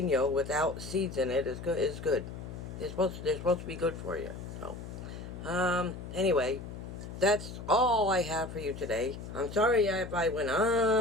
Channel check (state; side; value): noise; left; hum, 10 dB below the sound